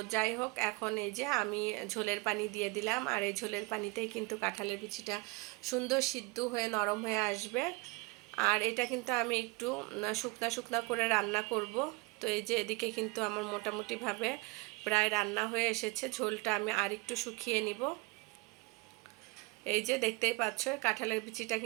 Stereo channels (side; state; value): left; quieter; 26.0 dB